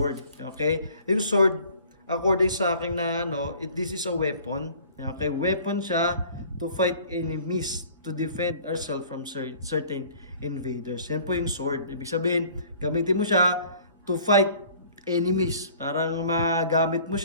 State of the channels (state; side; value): inverted; both; correlation -0.51